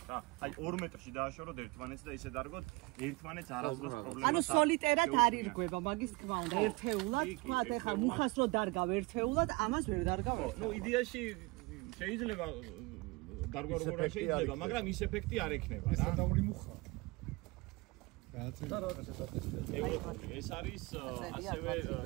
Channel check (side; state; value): left; quieter; 24.3 dB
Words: რა. აი 2 მეტრში დააშოროთ ერთმანეთს და ისე დარგოთ, ერთმანეთს არასდროს პრობლემას. ანუ სოლიტერად არ ირგვება, მაგის თქმა უნდა. ერთეულად, თქვათ ეხლა მუხას რო დარგავ ერთეულად, ამას ვერ დარგავ. ნუ იდეაში შეიძლება დარგვა როგორ არ შეიძლება, მაგრამ ის ეფექტი არ ექნება რა. სადაური მუხა. ეს არის ასევე